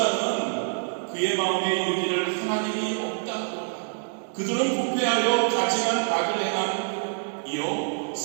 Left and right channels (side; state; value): left; silent; 61 dB below the other